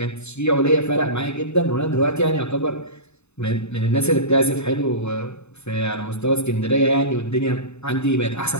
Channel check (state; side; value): late; right; 0.81 ms